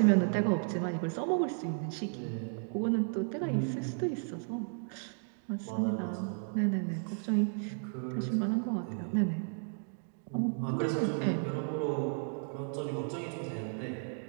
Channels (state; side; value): silent; left; 55 dB below the other